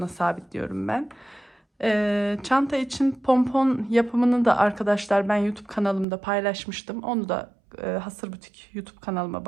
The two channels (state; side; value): drops out; left; at 6.1 s